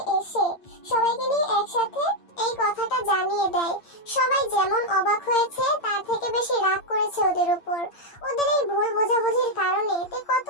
এসে সবাইকে নিয়ে একসাথে এই কথাটা জানিয়ে দেয়। সবাই যেমন অবাক হয়েছে তার থেকে বেশি রাগ করেছে ওদের উপর। ওদের এই ভুল বোঝাবুঝির কারণে তে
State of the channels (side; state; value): right; late; 8.8 ms